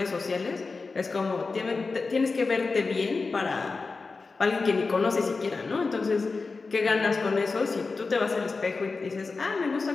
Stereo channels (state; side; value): quieter; right; 4.1 dB